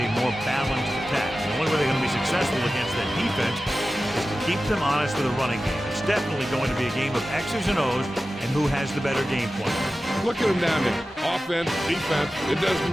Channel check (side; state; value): both; normal; correlation 0.94